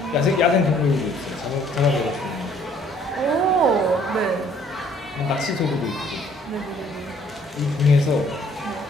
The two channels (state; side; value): normal; both; correlation 0.60